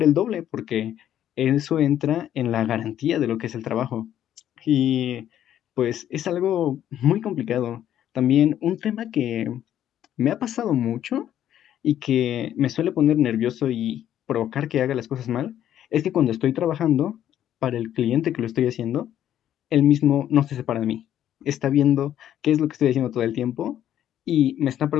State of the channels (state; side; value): quieter; right; 11.1 dB